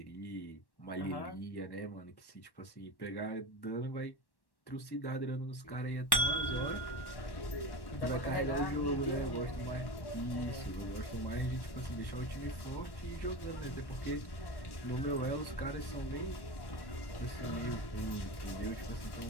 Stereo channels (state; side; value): late; right; 1.1 ms